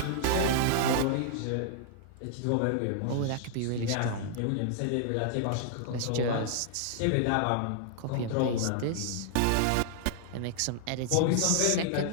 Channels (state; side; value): different; both; correlation -0.01